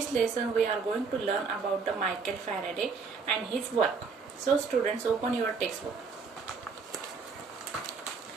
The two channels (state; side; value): quieter; left; 5.1 dB